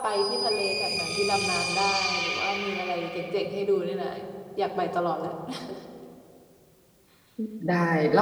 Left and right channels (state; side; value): identical; both; correlation 1.00